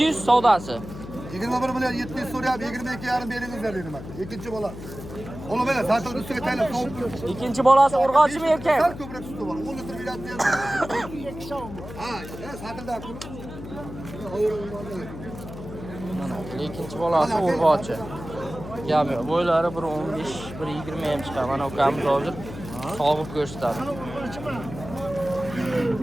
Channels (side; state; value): left; noise; hum, 12 dB below the sound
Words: savdosi. 21 million 700 so'rayapti, 22,5 beringizlar dedim aka. Ikkinchi bola. Ola mana zaten ustiga taylab sovuq. Ikkinchi bolasi urg'ochimi erkak? Sal ko'proq suti bor. 10 litr beradi. Ha, satilda pul. Mana ikkinchi bolasi urg'ochi. Gap yo'q. Bo'ylari 1.15, 1.20 ham chiqadi. Mana ukamiz hozir sog'ib ko'rsatadi.